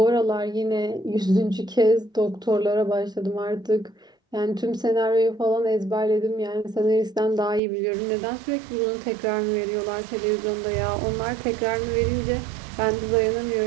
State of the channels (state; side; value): drops out; left; at 7.6 s